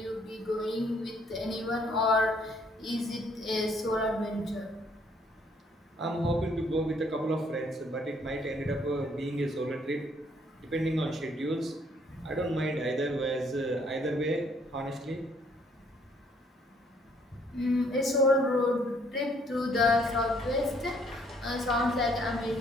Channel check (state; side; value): normal; both; correlation 0.65